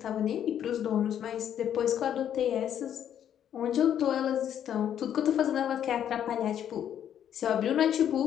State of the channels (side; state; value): right; quieter; 9.8 dB